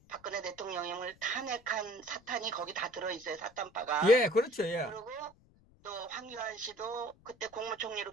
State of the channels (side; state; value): left; noise; rumble, 28 dB below the sound